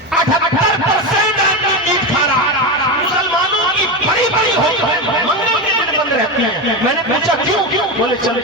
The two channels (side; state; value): both; normal; correlation 0.16